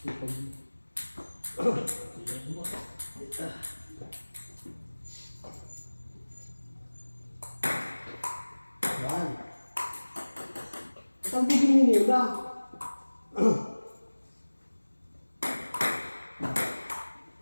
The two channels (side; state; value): both; inverted; correlation -1.00